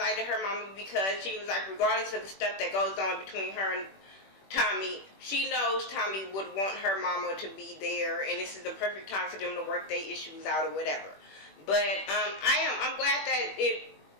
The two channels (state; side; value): late; right; 21 ms